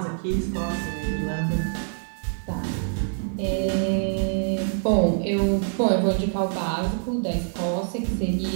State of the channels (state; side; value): silent; left; digital silence